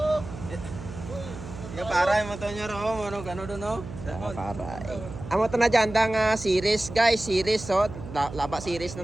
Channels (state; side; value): noise; right; hum, 12 dB below the sound